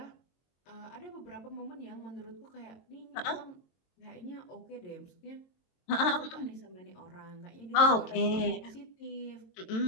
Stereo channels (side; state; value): right; late; 22 ms